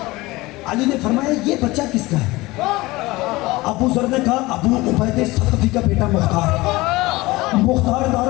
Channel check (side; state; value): right; quieter; 20.7 dB